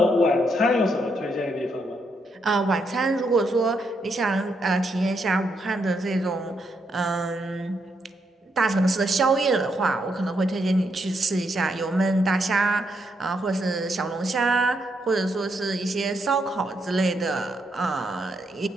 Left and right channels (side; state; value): both; normal; correlation 0.78